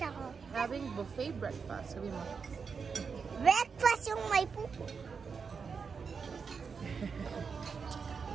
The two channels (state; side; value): quieter; left; 5.6 dB